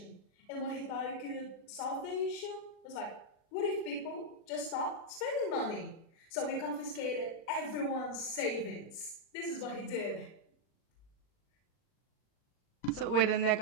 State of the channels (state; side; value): late; right; 39 ms